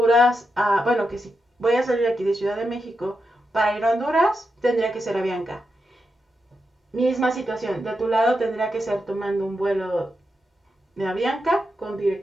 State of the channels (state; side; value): normal; both; correlation 0.86